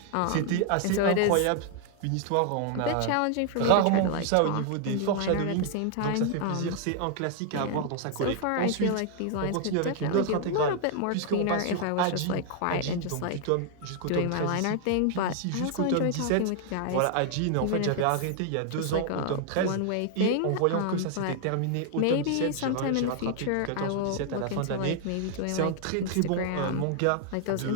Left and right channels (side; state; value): both; different; correlation 0.00